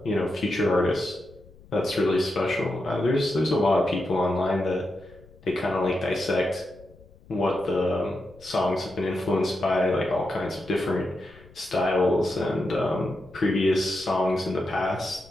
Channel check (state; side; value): noise; left; rumble, 24 dB below the sound